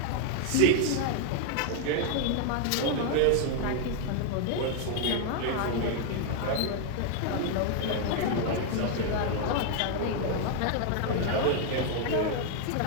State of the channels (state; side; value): different; both; correlation 0.00